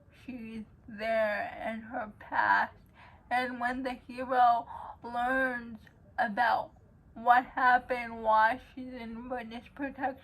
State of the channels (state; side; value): identical; both; correlation 1.00